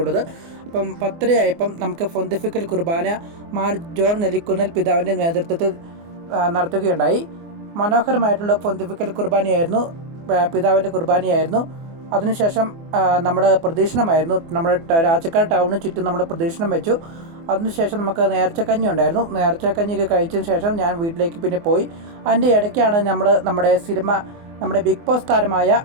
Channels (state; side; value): late; left; 24 ms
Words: ഉള്ളത്. അപ്പം 10:30 നമുക്ക് പൊന്തിഫിക്കൽ കുർബാന മാർ ജോൺ നെല്ലിക്കുന്നൽ പിതാവിൻ്റെ നേതൃത്വത്തിൽ നടത്തുകയുണ്ടായി. മനോഹരമായിട്ടുള്ള പൊന്തിഫിക്കൽ കുർബാനയായിരുന്നു, പിതാവിൻ്റെ കുർബാനയായിരുന്നു. അതിനുശേഷം നമ്മൾ പ്രദക്ഷിണമായിരുന്നു. നമ്മുടെ രാജക്കാട് ടൗണിന് ചുറ്റും നമ്മൾ പ്രദക്ഷിണം വെച്ചു. അതിനുശേഷം നമുക്ക് നേർച്ചക്കഞ്ഞി ഉണ്ടായിരുന്നു. നേർച്ചക്കഞ്ഞിയൊക്കെ കഴിച്ചതിന് ശേഷം ഞാൻ വീട്ടിലേക്ക് പിന്നെ പോയി. അതിൻ്റെ ഇടയ്ക്കാണ് നമ്മുടെ സിനിമ, നമ്മുടെ ബിഗ് ബോസ് താരമായ